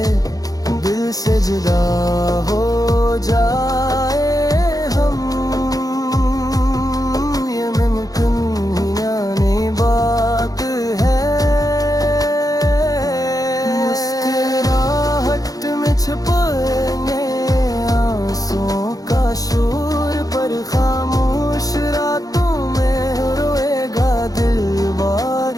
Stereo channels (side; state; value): right; late; 0.18 ms